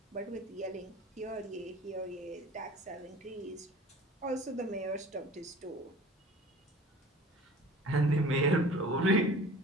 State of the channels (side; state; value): both; normal; correlation 0.44